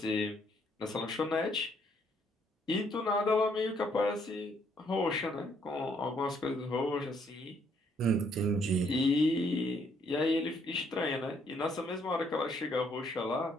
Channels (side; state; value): both; normal; correlation 0.69